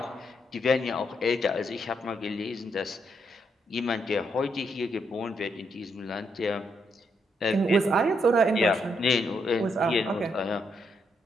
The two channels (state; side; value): normal; both; correlation 0.77